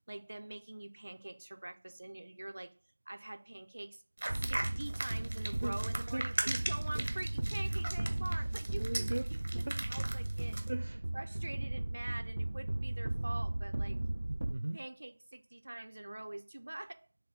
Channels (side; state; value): both; inverted; correlation -1.00